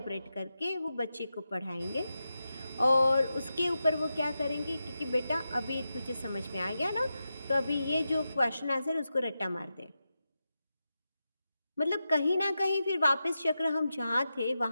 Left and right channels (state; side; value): inverted; both; correlation -0.90